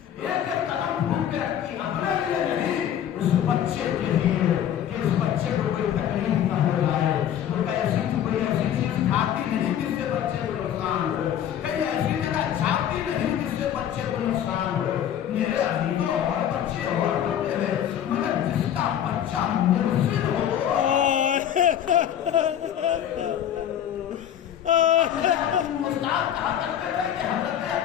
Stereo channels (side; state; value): right; quieter; 10.1 dB